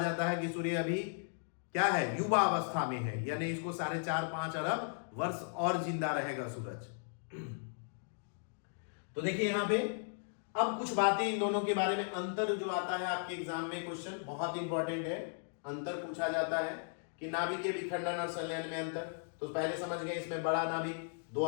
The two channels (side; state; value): right; silent; digital silence